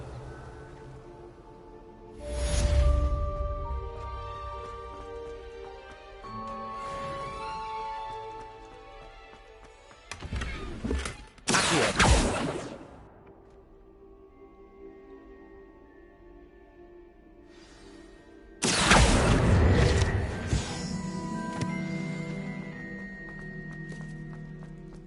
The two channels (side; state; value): both; identical; correlation 1.00